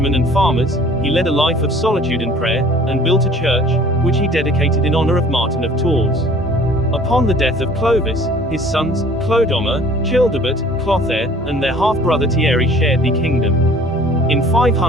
and farmers, he led a life of solitude and prayer, and built a church, which he dedicated in honor of Martin of Tours. Upon the death of Clovis, his sons, Clodomir, Childebert, Clotaire, and their half-brother Thierry shared the kingdom. In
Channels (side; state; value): both; normal; correlation 0.51